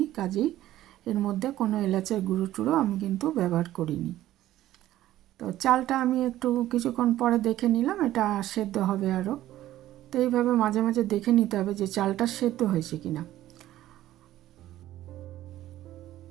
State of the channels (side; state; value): left; quieter; 14.1 dB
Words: কাজেই এর মধ্যে কোনো এলাচের গুঁড়ো টুড়ো আমি কিন্তু ব্যবহার করিনি। তো চালটা আমি একটু কিছুক্ষণ পরে দেখে নিলাম, এটা সেদ্ধ হবে আরও। তো এইভাবে মাঝে মাঝে দেখে নিতে হবে যে চালটা সেদ্ধ হয়েছে কিনা।